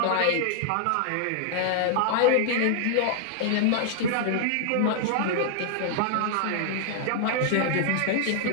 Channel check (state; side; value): different; both; correlation -0.01